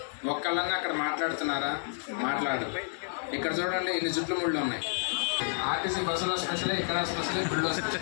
ఒక్కళ్ళన్నా అక్కడ మాట్లాడుతున్నారా? మాట్లాడు. ఇక్కడ చూడండి ఇన్ని జుట్లు ముళ్ళు ఉన్నాయి. ఆర్టీసీ బస్సులో స్పెషలే, ఇక్కడ స్పెషలే, గుళ్ళో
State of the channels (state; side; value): silent; right; digital silence